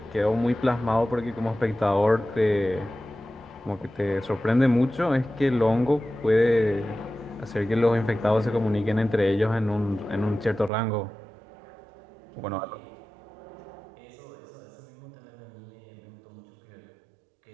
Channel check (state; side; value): drops out; left; at 10.7 s